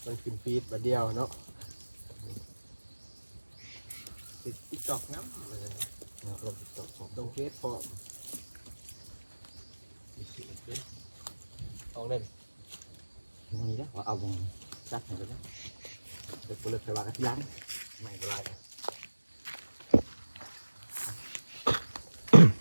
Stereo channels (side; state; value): both; inverted; correlation -1.00